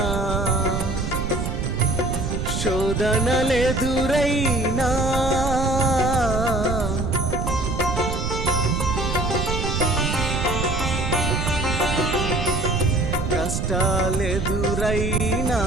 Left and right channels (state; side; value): noise; right; rumble, 2 dB below the sound